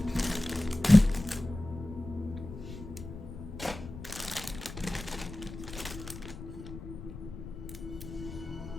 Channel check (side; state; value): left; noise; rumble, 11 dB below the sound